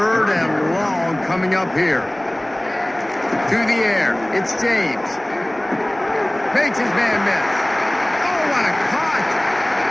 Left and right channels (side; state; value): right; noise; rumble, 29 dB below the sound